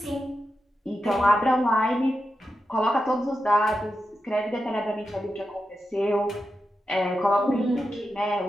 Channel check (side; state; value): both; normal; correlation 0.89